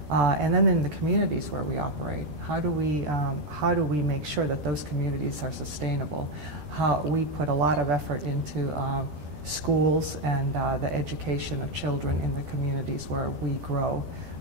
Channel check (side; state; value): left; late; 13 ms